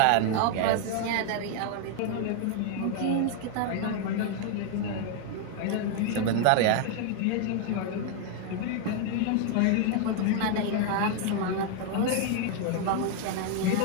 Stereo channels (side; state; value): both; different; correlation 0.00